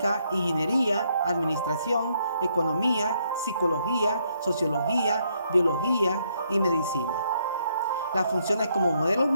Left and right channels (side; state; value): both; inverted; correlation -0.73